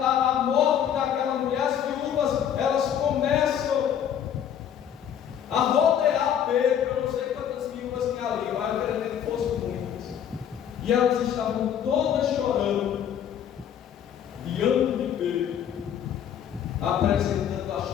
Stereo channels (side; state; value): right; quieter; 9.3 dB